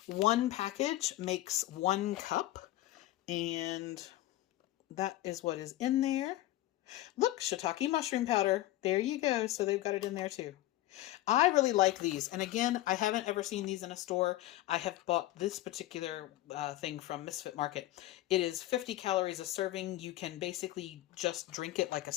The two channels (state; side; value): quieter; right; 15.7 dB